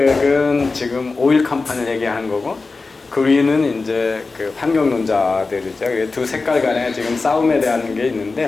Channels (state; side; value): quieter; right; 3.9 dB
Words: 지금 오일 컴퍼니를 얘기하는 거고, 그린은 이제 그 환경론자들이죠. 두 색깔 간에 지금 싸움에 대한 게